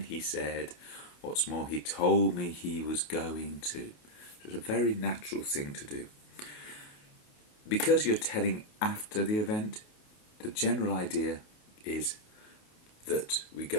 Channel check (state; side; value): late; right; 28 ms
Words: he said, what's more, he told me he was going to. So it's a very natural thing to do. Because you're telling after the event, the general idea is that we